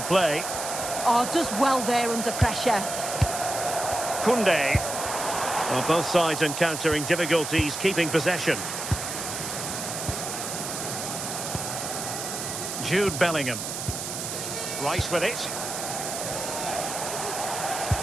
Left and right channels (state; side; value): noise; right; hiss, 5 dB below the sound